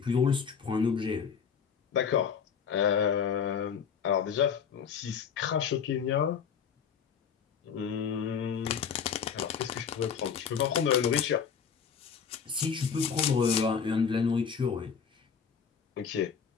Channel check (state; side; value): quieter; right; 6.8 dB